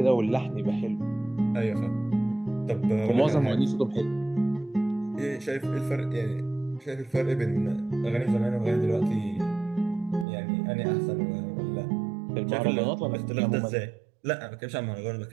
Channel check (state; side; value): drops out; left; at 10.2 s